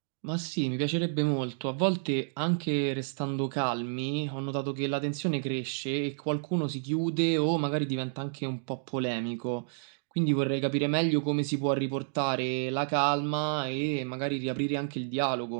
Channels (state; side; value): silent; left; digital silence